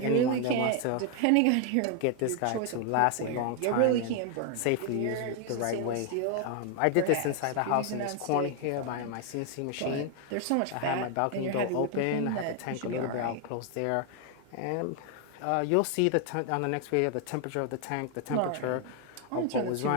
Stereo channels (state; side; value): different; both; correlation 0.00